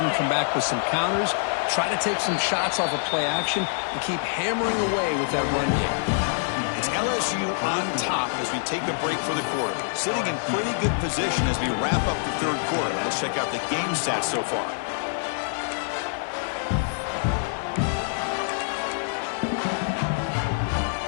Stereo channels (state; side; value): silent; right; digital silence